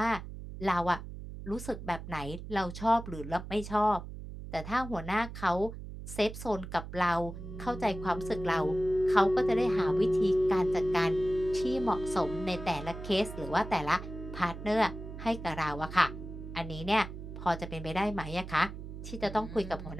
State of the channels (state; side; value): noise; right; hum, 10 dB below the sound